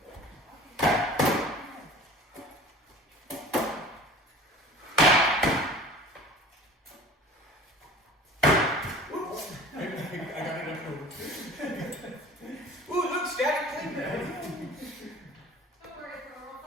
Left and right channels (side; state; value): both; normal; correlation 0.42